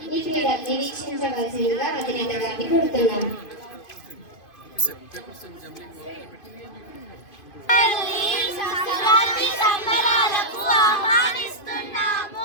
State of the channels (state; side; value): late; right; 2.5 ms